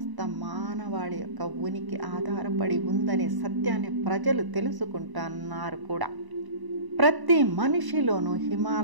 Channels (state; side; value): late; left; 1.0 ms